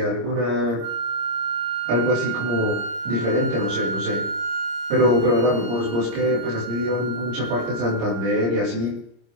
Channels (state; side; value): late; left; 26 ms